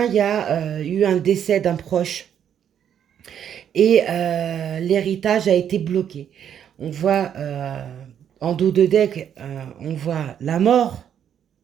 il y a eu un décès d'un proche. Et l'héritage a été bloqué. On voit en dos de deck, on voit la mort,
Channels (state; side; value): quieter; left; 9.1 dB